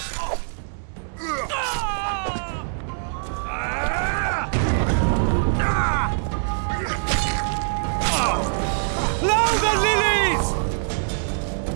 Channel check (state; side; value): silent; left; 62 dB below the other